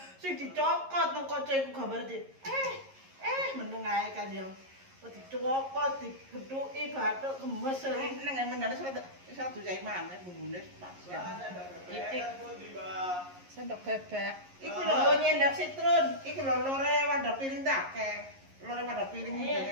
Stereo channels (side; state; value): left; late; 11 ms